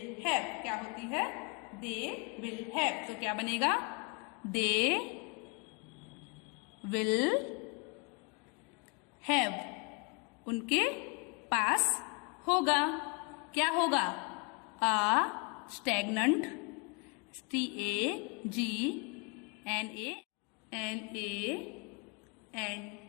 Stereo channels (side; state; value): right; quieter; 32.6 dB